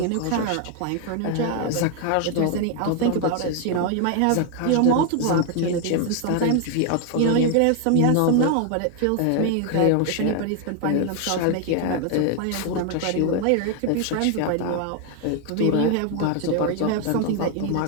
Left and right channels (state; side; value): different; both; correlation 0.00